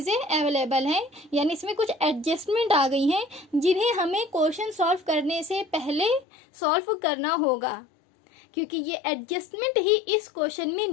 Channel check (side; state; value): right; drops out; at 6.2 s